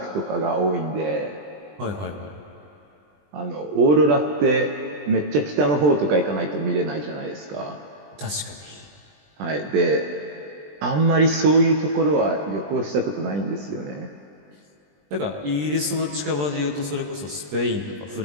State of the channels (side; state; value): left; late; 20 ms